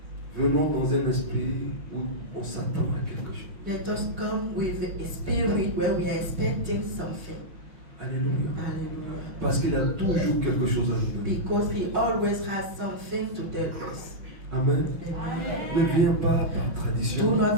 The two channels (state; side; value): late; left; 5.5 ms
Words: venons dans un esprit où on s'attend à quelque chose. let us come with a spirit where we are expecting something. Alléluia. Hallelujah. Parce qu'il y a toujours quelque chose à nous donner. Because He always has something to tell us. Amen. Amen. Ne viens pas par Do tradition.